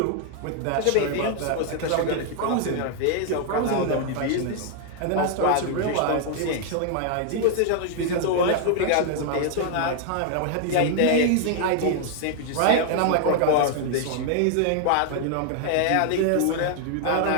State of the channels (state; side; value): different; both; correlation 0.00